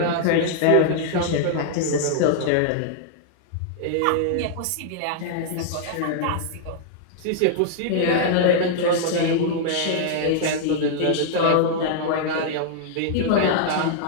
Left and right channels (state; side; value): different; both; correlation -0.01